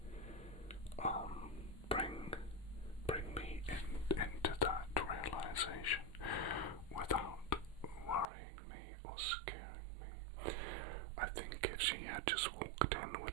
bring me into that realization without worrying me or scaring me. I think if she had just walked in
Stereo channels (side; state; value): left; drops out; at 8.2 s